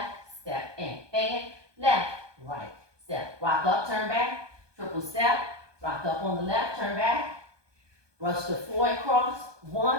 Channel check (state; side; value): late; left; 1.2 ms